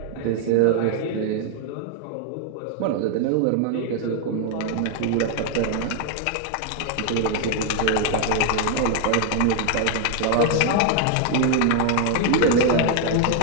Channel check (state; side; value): different; both; correlation 0.00